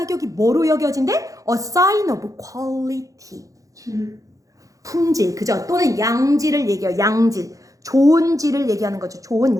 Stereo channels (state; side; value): late; left; 0.16 ms